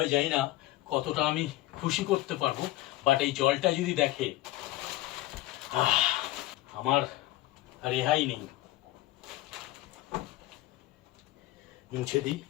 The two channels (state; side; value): quieter; right; 16.4 dB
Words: জানি না কতটা আমি খুশি করতে পারবো, বাট এই জলটা যদি দেখে আমার রেহাই নেই। মুছে দিই।